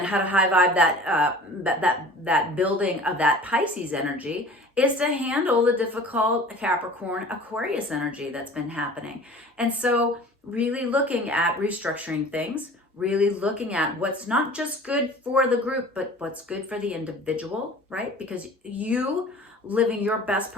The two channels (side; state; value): both; normal; correlation 0.43